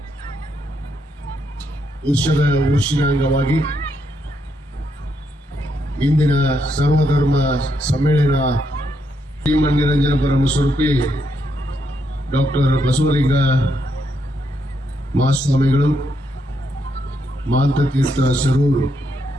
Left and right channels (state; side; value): normal; both; correlation 0.78